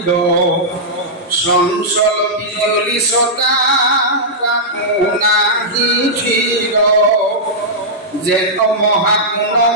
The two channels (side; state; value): both; normal; correlation -0.11